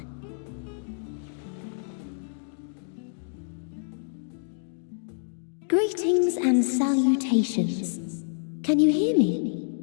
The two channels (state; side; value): silent; right; digital silence